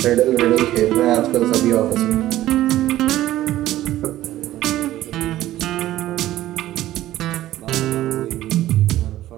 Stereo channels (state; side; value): quieter; left; 14.5 dB